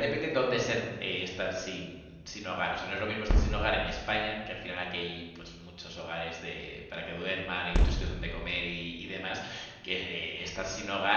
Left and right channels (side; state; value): both; identical; correlation 1.00